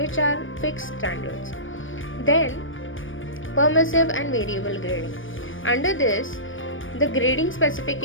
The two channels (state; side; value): late; right; 0.57 ms